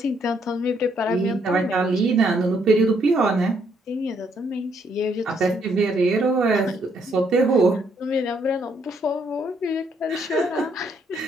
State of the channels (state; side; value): normal; both; correlation 0.71